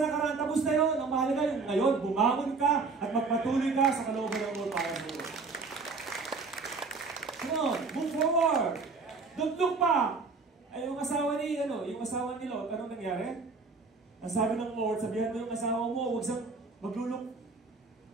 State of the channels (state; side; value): quieter; left; 4.3 dB